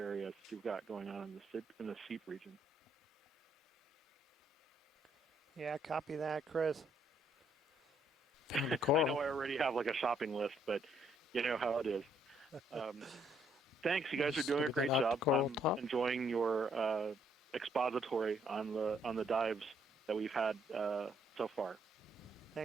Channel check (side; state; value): both; normal; correlation 0.70